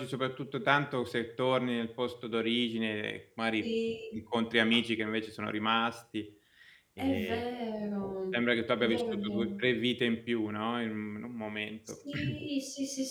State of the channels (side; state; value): both; identical; correlation 1.00